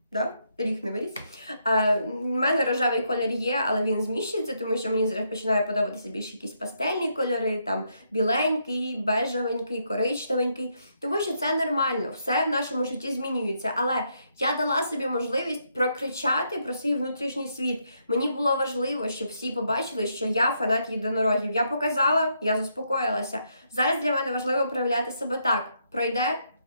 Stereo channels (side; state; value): both; inverted; correlation -0.77